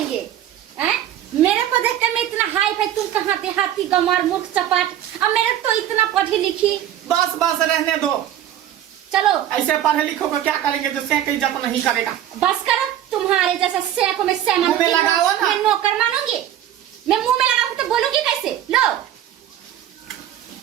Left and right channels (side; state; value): left; quieter; 11.5 dB